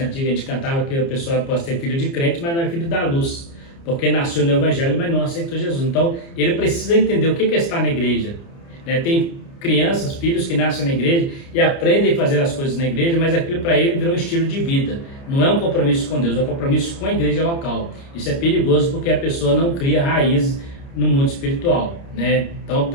antiga que a gente cantava que a pessoa pode ser filho de crente, mas não é filho da luz, porque nasceu no evangelho, mas não aceitou Jesus. Então ele precisa entender o que é estar na igreja, né? Tem crianças, filhos que nascem na igreja e aprendem a fazer as coisas na igreja, mas aquilo para ele virou um estilo de vida. Não é um compromisso com Deus, é um compromisso com a igreja local. Isso é perigoso porque a pessoa não cria raízes no mundo espiritual, né? Então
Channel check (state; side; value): late; right; 29 ms